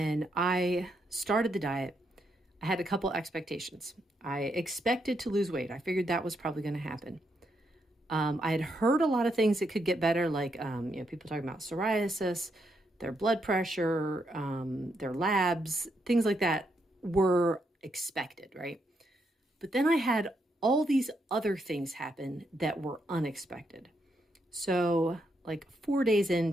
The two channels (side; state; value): both; normal; correlation 0.79